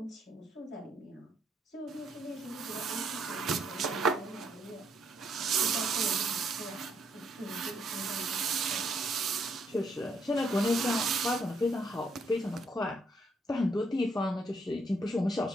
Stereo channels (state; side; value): normal; both; correlation 0.72